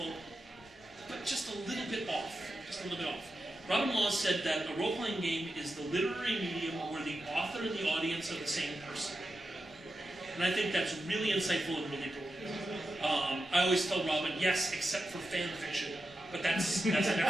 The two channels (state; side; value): normal; both; correlation 0.90